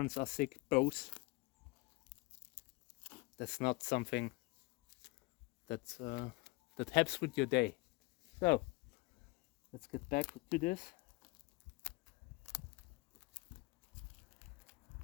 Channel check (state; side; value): quieter; right; 23.1 dB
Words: are sick, both. That's not something that helps with your day. So, let's get back to this.